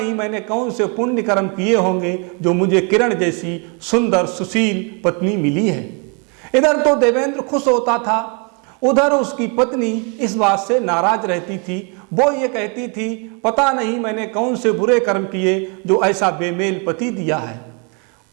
मैंने कौन से पुण्य कर्म किए होंगे जो मुझे किरण जैसी सुंदर सुशील पत्नी मिली है। इधर तो देवेंद्र खुश होता था, उधर उसकी पत्नी इस बात से नाराज रहती थी। वो ये कहती थी पता नहीं मैंने कौन से बुरे कर्म किए जो ऐसा बेमेल पति दिया है।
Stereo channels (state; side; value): quieter; left; 35.4 dB